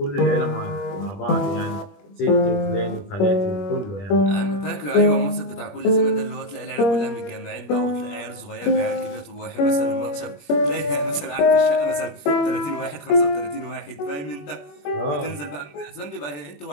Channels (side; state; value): right; late; 21 ms